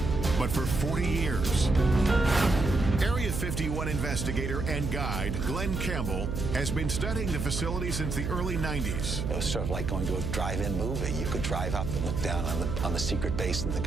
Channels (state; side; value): noise; right; hum, 3 dB below the sound